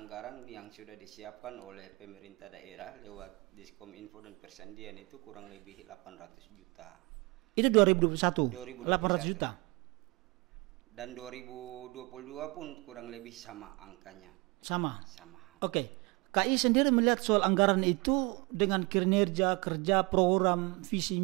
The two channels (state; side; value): quieter; left; 26.1 dB